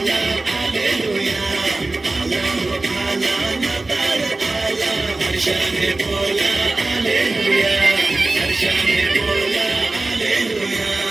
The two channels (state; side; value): quieter; left; 3.2 dB